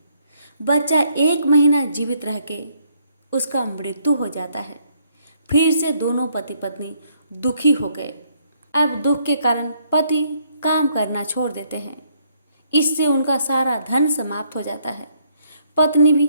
बच्चा 1 महीना जीवित रह के उसका मृत्यु हो जाता है। फिर से दोनों पति पत्नी दुखी हो गए। अब दुख के कारण पति काम करना छोड़ देते हैं। इससे उनका सारा धन समाप्त हो जाता है। पत्नी भी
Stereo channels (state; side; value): inverted; both; correlation -0.70